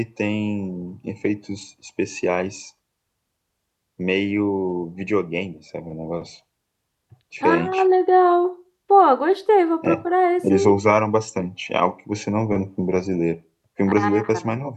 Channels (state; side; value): identical; both; correlation 1.00